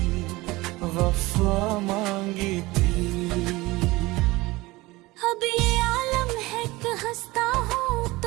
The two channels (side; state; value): left; quieter; 20.8 dB